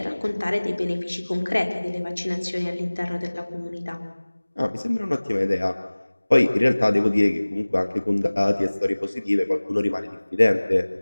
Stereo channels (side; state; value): both; inverted; correlation -1.00